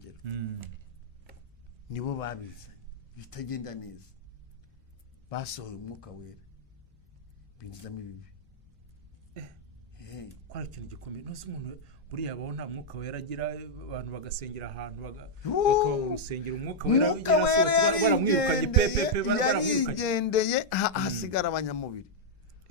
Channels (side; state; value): both; normal; correlation -0.05